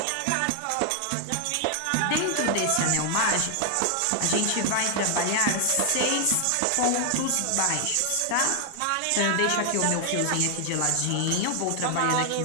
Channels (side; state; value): both; different; correlation 0.00